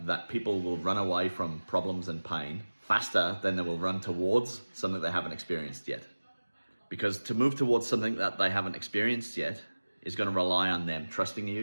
that people will run away from problems and pain faster than they will run towards something they haven't experienced yet. Because to move towards something that they haven't experienced yet is going to rely on them trusting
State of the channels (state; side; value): inverted; both; correlation -1.00